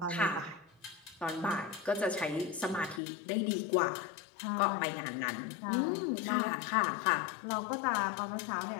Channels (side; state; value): right; drops out; at 3.0 s